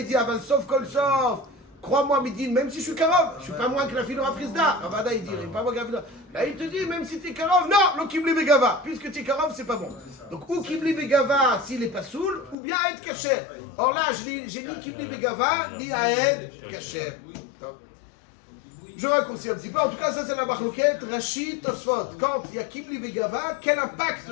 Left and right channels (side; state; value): right; drops out; at 12.6 s